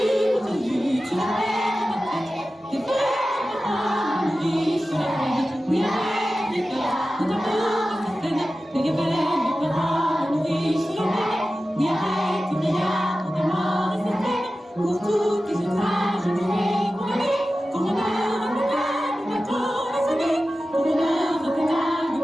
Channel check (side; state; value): both; normal; correlation 0.94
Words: pour toutes les outrages, je vais condamner. Pour l'honneur de l'État, nous battons la sonner. Pour l'honneur de l'État, nous